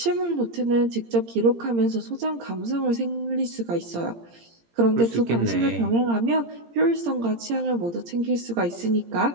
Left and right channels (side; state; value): left; late; 17 ms